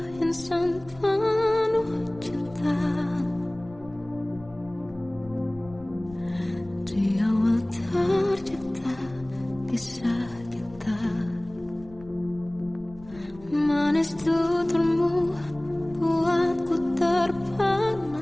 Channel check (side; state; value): left; noise; rumble, 21 dB below the sound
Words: insan penuh cinta. Di awal tercipta kisah kita, manis tuturmu buatku